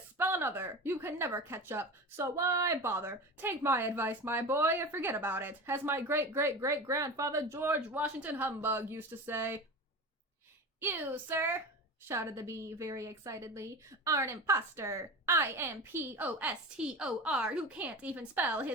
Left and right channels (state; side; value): normal; both; correlation 0.29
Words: another. You can never catch up, so why bother? Take my advice, my boy, and forget about it, as my great-great-great-grandfather George Washington Humbug used to say. You, sir, shouted the bee very excitedly, are an impostor. I-M-P-O-S-T-O-R, who can't even spell